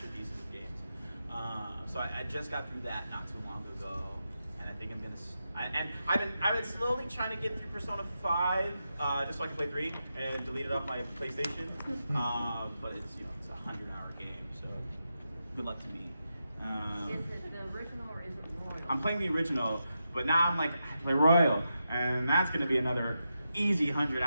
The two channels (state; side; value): inverted; both; correlation -0.87